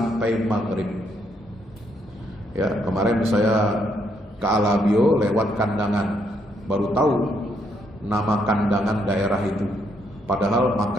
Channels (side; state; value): both; normal; correlation 0.74